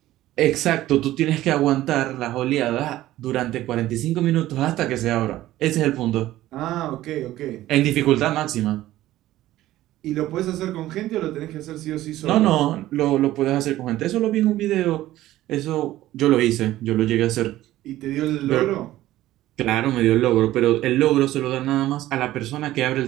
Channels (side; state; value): left; quieter; 15.0 dB